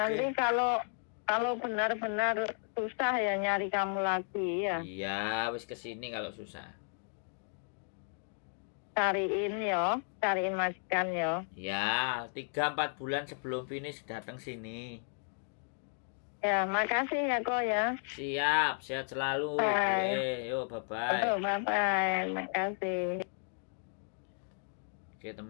kalau benar-benar susah ya nyari kamu lagi ya. Iya, wis kesini kalau susah. Cariin majikan ya. Ya, 3-4 bulan sebelum finish datang sini. Ya, makasih ya kok ya. Siap, sehat selalu. Yo, bye-bye. Bye-bye, makasih. Oke,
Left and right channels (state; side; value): silent; right; 55 dB below the other